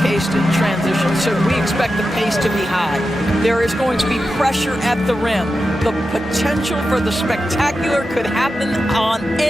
in transition, so we expect the pace to be high. There is going to be pressure at the rim. The potential for the spectacular could happen on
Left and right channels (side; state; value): both; normal; correlation 0.91